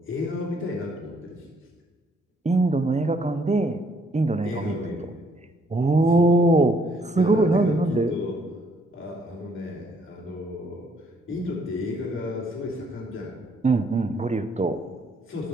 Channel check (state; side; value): normal; both; correlation 0.67